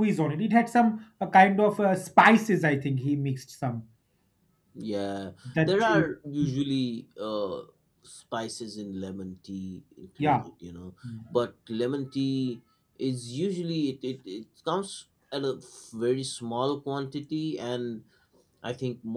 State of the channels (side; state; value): both; identical; correlation 1.00